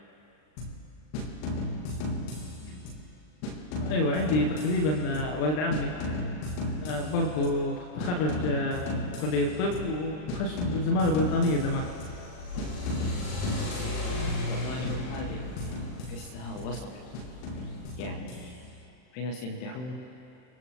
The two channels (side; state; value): right; late; 39 ms